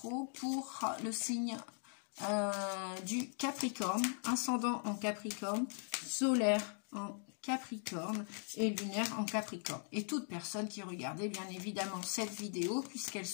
pour le signe du Capricorne, ascendant en Capricorne, solaire en Capricorne et lunaire en Capricorne. Et toute personne qui regardait bien évidemment cette vidéo, puisqu'elle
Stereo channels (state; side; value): silent; right; 51 dB below the other